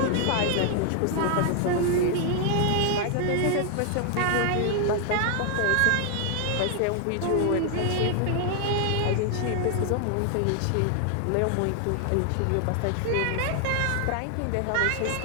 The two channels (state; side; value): different; both; correlation 0.00